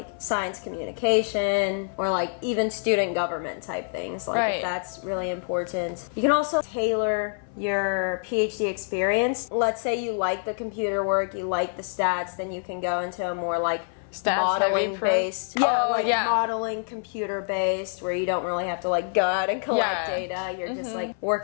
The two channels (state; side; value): silent; right; 59 dB below the other